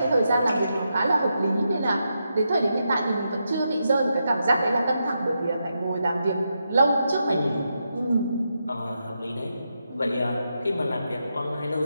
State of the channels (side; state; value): both; inverted; correlation -0.84